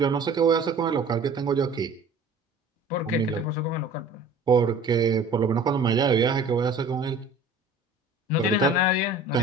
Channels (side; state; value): left; quieter; 3.2 dB